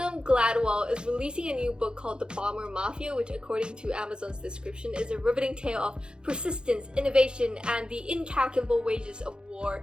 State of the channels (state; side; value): late; left; 0.049 ms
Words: Gladwell is releasing a new book called The Bomber Mafia, which according to Amazon's description is a riveting tale of persistence, innovation, and the incalculable wages of war.